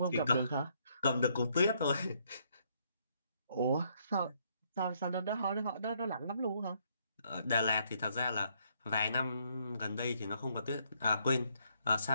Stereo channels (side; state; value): both; inverted; correlation -0.71